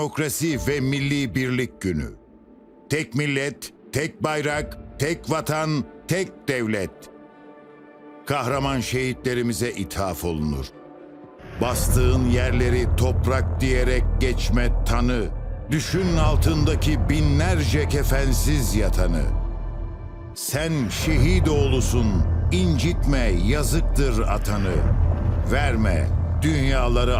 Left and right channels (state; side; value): identical; both; correlation 1.00